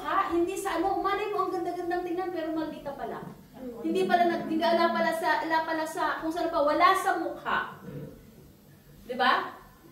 hindi sa ano. Malay mo, ang ganda-gandang tingnan, pero maldita pala. Hindi ala pala sa, kung saan pa, wala sa mukha. Diba?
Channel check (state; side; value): identical; both; correlation 1.00